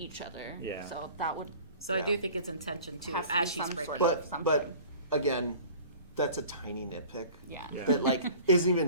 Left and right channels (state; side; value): inverted; both; correlation -0.45